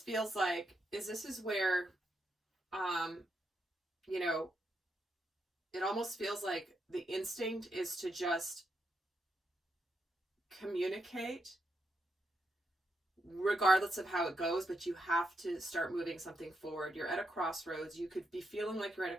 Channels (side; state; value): both; normal; correlation 0.82